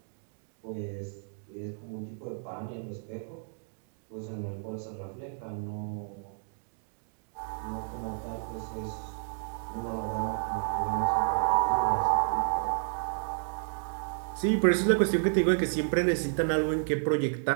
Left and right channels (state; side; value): silent; left; digital silence